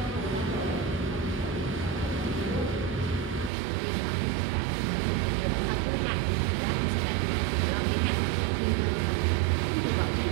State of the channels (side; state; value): left; drops out; at 3.5 s